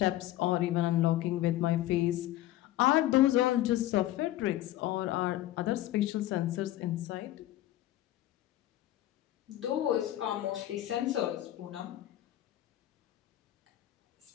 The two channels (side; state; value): right; quieter; 14.5 dB